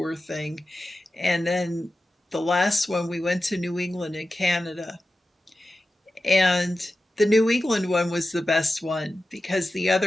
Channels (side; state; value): both; normal; correlation 0.93